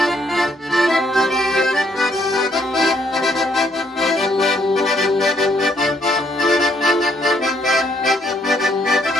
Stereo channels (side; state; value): both; normal; correlation 0.70